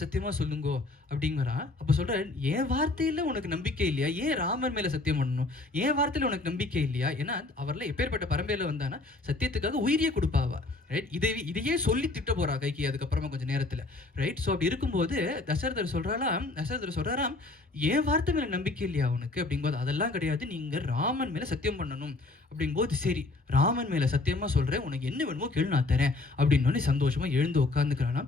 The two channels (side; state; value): right; quieter; 3.2 dB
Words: சொல்லுங்கோ அப்படிங்கிறா. அப்போ சொல்கிறார், என் வார்த்தையில் உனக்கு நம்பிக்கை இல்லையா, ஏன் ராமன் மேலே சத்தியம் பண்ணணும், என் வார்த்தையில் உனக்கு நம்பிக்கை இல்லையா, ஏன்னா அவரில் எப்பேற்பட்ட பரம்பரையில் வந்தானா சத்தியத்துக்காக உயிரியே கொடுப்பாவா, ரைட், இதையே சொல்லி திட்ட போகிறா கைகி அதுக்கப்புறமா கொஞ்சம் நேரத்தில், ரைட். ஸோ அப்படி இருக்கும்போது தசரதர் சொல்கிறாராம், என் வார்த்தை மேலே நம்பிக்கை இல்லையா உனக்கு அப்படிங்கும்போது, அதெல்லாம் கிடையாது, நீங்கள் ராமன் மேலே சத்தியம் பண்ணணும் அப்படிங்கும்போது, சரி ராமன் மேலே சத்தியமாக சொல்கிறேன், உனக்கு என்ன வேணுமோ கேளு நான் தரேன் அப்படின்னோடனே சந்தோஷமாக எழுந்து உட்காந்துக்கிறானாம்.